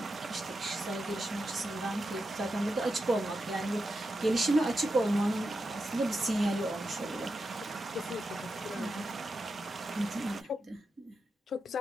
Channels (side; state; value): both; normal; correlation 0.88